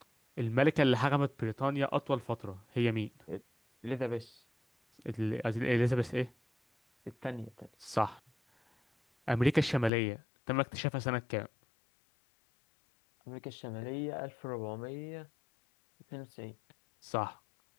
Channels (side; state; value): right; drops out; at 9.9 s